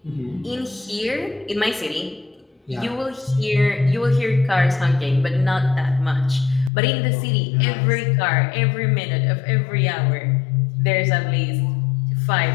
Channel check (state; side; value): drops out; right; at 6.7 s